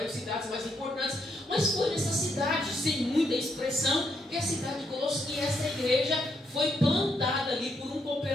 cidades mais importantes. Mas foi nessa cidade, sem muita expressão, que a cidade de Colossos, que essa igreja foi plantada ali por um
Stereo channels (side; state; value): both; normal; correlation 0.77